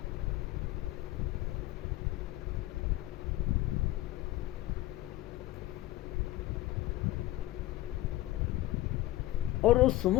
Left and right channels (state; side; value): quieter; right; 16.4 dB